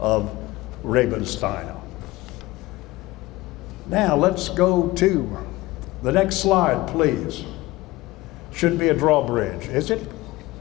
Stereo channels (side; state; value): right; quieter; 18.9 dB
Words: Rabensteiner. Now let's go to the next slide, please. Should be a drawbridge, is it?